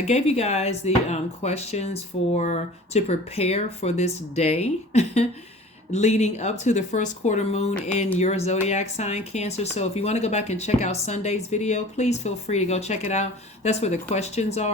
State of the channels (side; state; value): both; normal; correlation 0.43